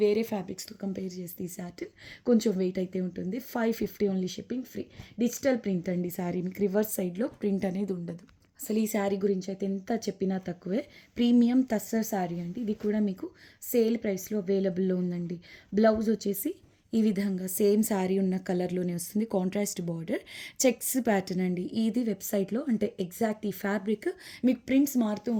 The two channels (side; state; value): both; identical; correlation 1.00